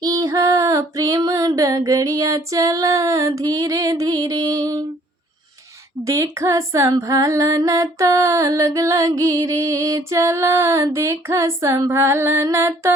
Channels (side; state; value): both; normal; correlation 0.59